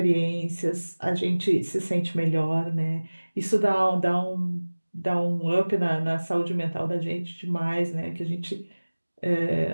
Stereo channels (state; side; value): inverted; both; correlation -1.00